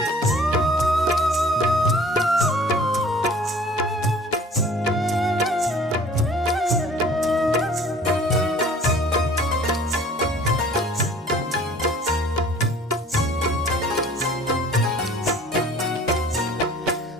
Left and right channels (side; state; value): both; normal; correlation 0.50